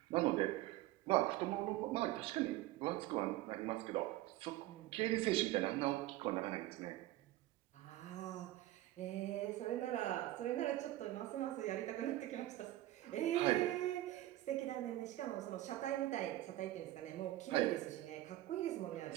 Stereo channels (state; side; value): quieter; left; 15.6 dB